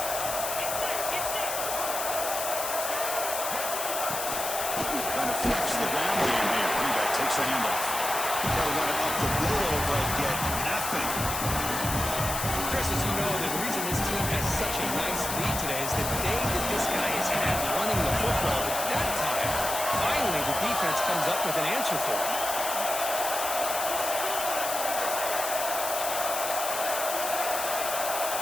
Trying to flex the ground game here. Running back takes the handoff. Try to run it up the middle, but get nothing. Chris, as you know, the reason this team has such a nice lead today is the day that this guy has had running the football. At that time, finally, the defense comes up with an answer for him.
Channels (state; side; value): noise; left; hiss, 3 dB below the sound